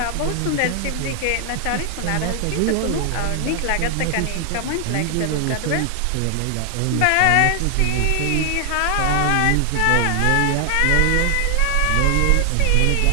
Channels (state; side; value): different; both; correlation 0.00